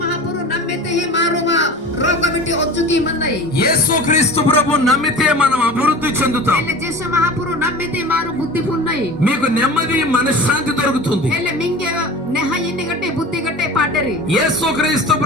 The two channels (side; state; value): both; normal; correlation 0.36